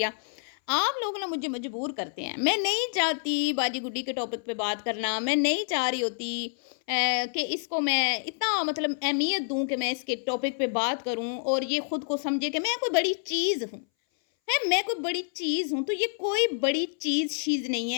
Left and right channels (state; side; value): silent; right; 59 dB below the other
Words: आप लोग ना मुझे मजबूर करते हैं। मैं नहीं चाहती बाजी गुड्डी के टॉपिक पे बात करना। मैं नहीं चाह रही होती कि इसको मैं इतना मतलब अहमियत दूँ कि मैं इसके टॉपिक पे बात करूँ और ये खुद को समझे कि मैं कोई बड़ी चीज़ हूँ। मैं कोई बड़ी चीज़ हूँ, तो ये कोई बड़ी चीज़ नहीं